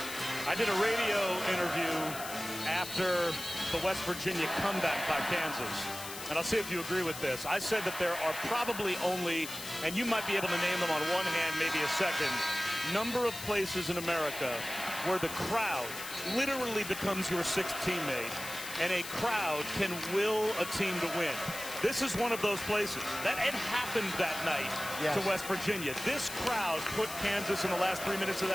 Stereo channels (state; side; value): noise; left; hiss, 9 dB below the sound